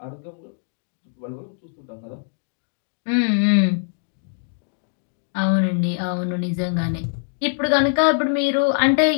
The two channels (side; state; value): right; silent; digital silence